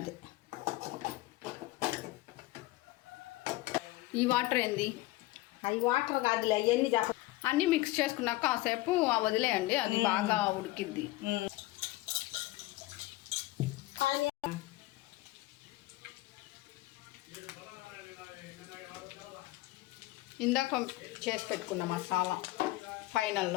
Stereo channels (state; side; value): quieter; right; 18.6 dB